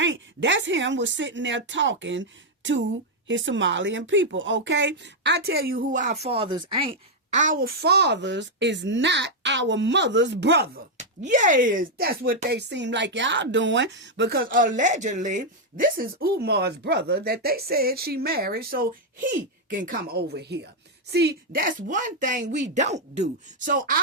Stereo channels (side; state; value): both; normal; correlation -0.01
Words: That's him was sitting there talking to his Somalian people, okay? I tell you who our fathers ain't. Our fathers is not our mother's brother. Yes, that's what they seem like y'all doing, because allegedly this is Umar's brother that they said she married so he can come over here. See, that's one thing we don't do. So